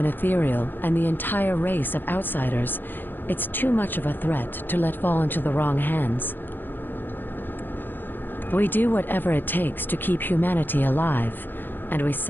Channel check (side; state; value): right; late; 0.094 ms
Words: ethereal and the entire race of outsiders, it's too much of a threat to let fall into the wrong hands. We do whatever it takes to keep humanity alive, and we